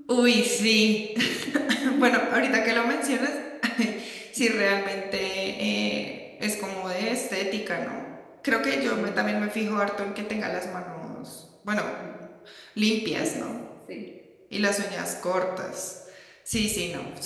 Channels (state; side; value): identical; both; correlation 1.00